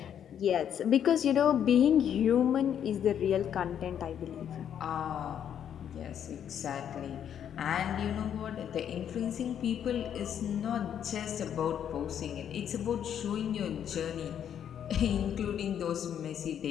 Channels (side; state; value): right; quieter; 9.2 dB